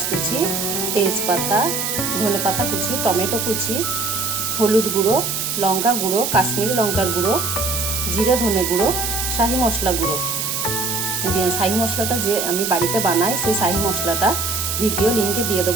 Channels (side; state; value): right; noise; hiss, 1 dB below the sound